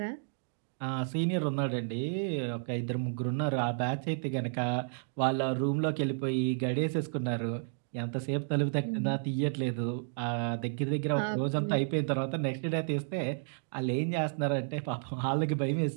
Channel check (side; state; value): left; silent; digital silence